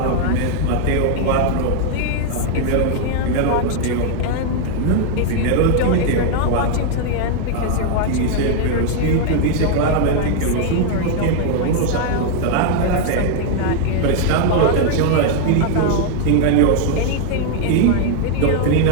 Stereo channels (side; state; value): both; different; correlation 0.00